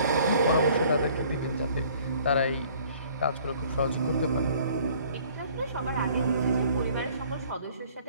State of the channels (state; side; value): inverted; both; correlation -0.56